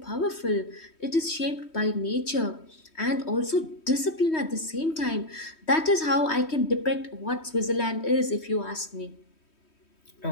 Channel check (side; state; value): right; late; 3.1 ms